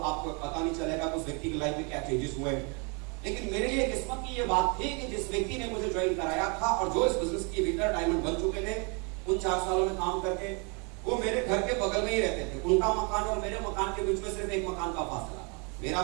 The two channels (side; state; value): left; quieter; 33.9 dB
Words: आपको पता नहीं चलेगा उस व्यक्ति की लाइफ में क्या चेंजेस हुए। लेकिन मेरे लिए किस्मत की ये बात थी कि जिस व्यक्ति ने मुझे ज्वाइन कराया था और जो इस बिजनेस के भीतर डायमंड बन चुके थे, उन 4 सालों में काम करके, वो मेरे घर के बगल में ही रहते थे। उनका मकान और मेरे मकान के बीच में सिर्फ एक मकान का फासला था।